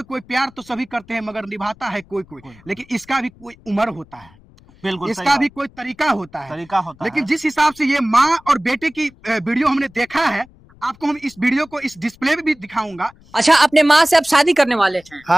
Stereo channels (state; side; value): noise; left; rumble, 26 dB below the sound